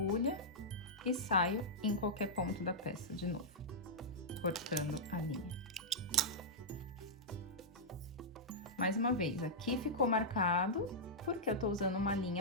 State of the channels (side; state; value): both; normal; correlation -0.10